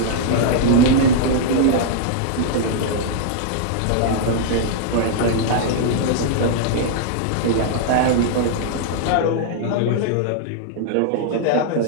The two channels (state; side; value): different; both; correlation -0.01